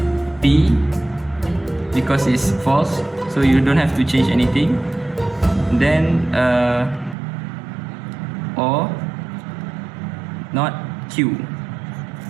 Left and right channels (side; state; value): left; drops out; at 7.2 s